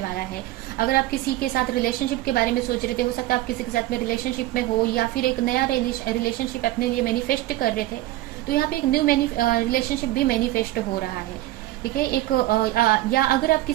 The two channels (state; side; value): quieter; left; 15.9 dB